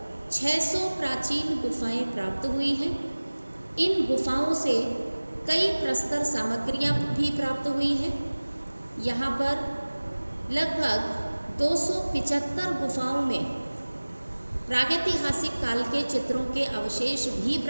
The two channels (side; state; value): both; inverted; correlation -1.00